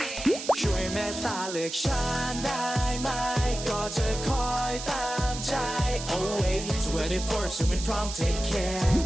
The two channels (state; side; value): noise; right; hiss, 8 dB below the sound